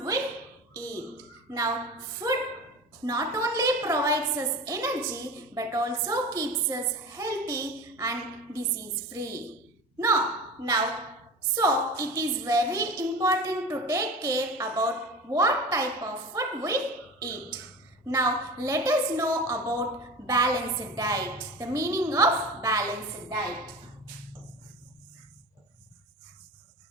we eat. Now food not only provides us energy but also keeps us healthy and disease free. Now, so it is very important to take care about what type of food we eat. Now let us know about balanced diet. The meaning of balanced diet.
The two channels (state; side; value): normal; both; correlation 0.32